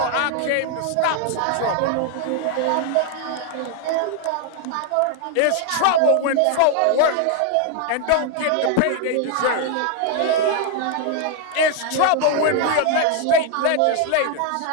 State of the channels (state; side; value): different; both; correlation 0.00